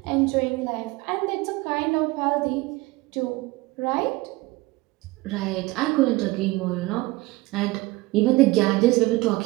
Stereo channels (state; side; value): quieter; left; 20.9 dB